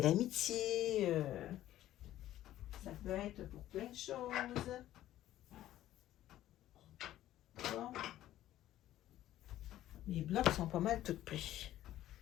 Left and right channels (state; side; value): quieter; right; 13.5 dB